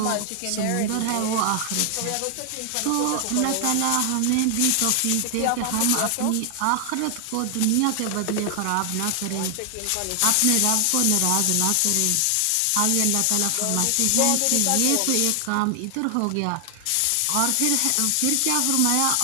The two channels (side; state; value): both; different; correlation 0.00